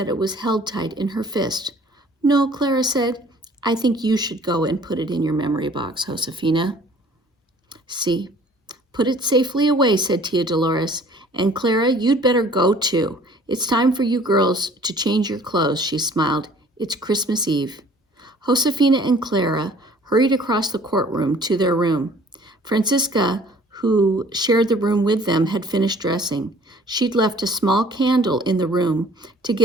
it was held tight in her fist. "No," Clara said, "I think you should go and put it in your memory box, Josefina." "See, put it safely away," said Tia Dolores. "And Clara, you'd better go too. It's time for you girls to change your clothes," she smiled. "It's Christmas Eve." Josefina and Clara hurried across the courtroom to their room. Francisca, who shared the room with them, had finished dressing. She'd left a small candle in the room to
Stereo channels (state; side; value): normal; both; correlation 0.53